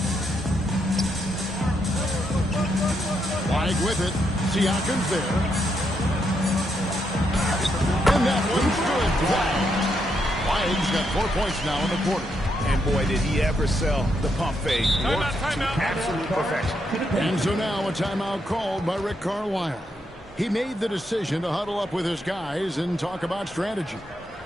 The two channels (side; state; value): both; normal; correlation 0.79